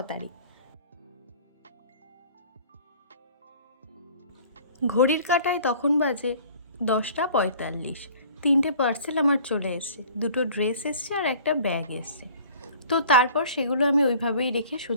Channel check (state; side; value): inverted; both; correlation -0.49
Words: তারিখ। ঘড়ির কাঁটায় তখন বাজে 10:45। 3টে পার্সেল আমার চলে এসছে, 2টো ড্রেস এসছে আর একটা ব্যাগ এসছে। তো তারপর সেগুলো আমি ওইভাবেই রেখে